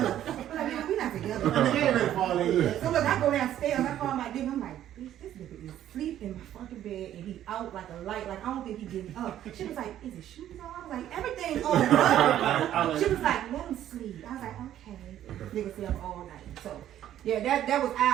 I'm like, nigga, we not together. I ain't ready to fall in yet. So look, I go downstairs, I call my nigga, I'm like, bitch, this nigga is asleep in my fucking bed and he out like a light, like I don't think he getting up. She was like, is his shoes on? I was like, everything's on. She was like, let him sleep. I was like, okay. Nigga stay up all night. So yeah, that was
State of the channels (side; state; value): left; quieter; 11.7 dB